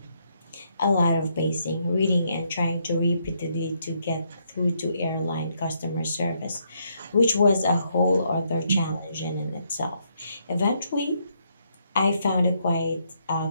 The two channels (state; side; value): inverted; both; correlation -0.75